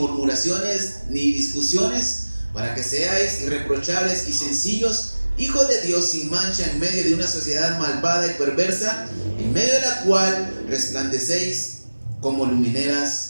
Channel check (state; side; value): inverted; both; correlation -1.00